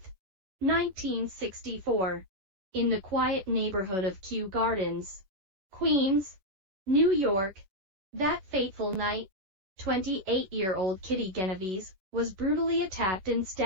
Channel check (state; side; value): late; left; 11 ms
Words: 1964, in the quiet neighborhood of Kew Gardens, Queens, New York. That fateful night, 28-year-old Kitty Genovese was brutally attacked and